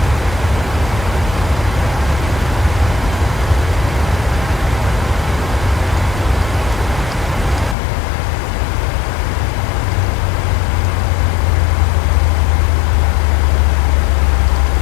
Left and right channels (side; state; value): right; drops out; at 7.8 s